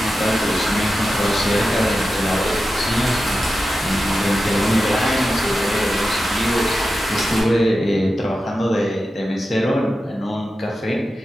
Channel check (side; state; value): both; normal; correlation 0.92